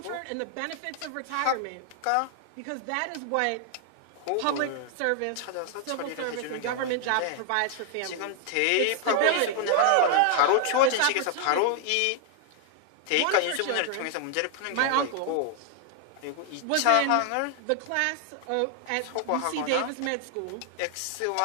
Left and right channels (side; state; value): both; different; correlation 0.00